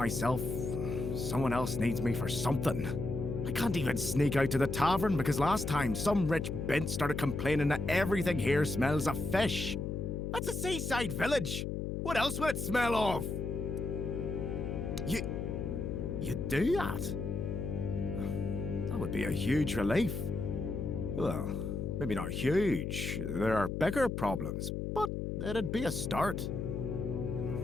someone else needs me for something. I can't even sneak out to the tavern because last time some rich bint started complaining that everything here smells of fish. That's a seaside village. What else would it smell of? You do that? That would be a huge relief. Well, maybe not huge. There are bigger problems, but it'd be a start.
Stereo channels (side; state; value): left; noise; hum, 3 dB below the sound